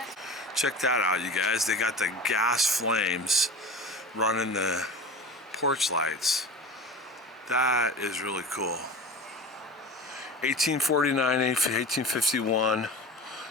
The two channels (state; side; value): normal; both; correlation 0.34